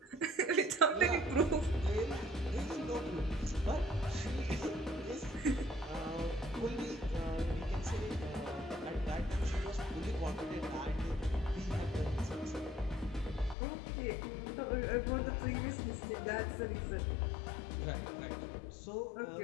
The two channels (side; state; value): right; drops out; at 13.6 s